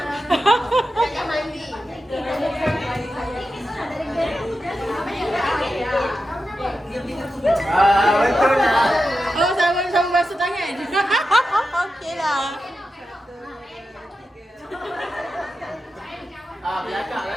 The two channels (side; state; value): both; normal; correlation 0.90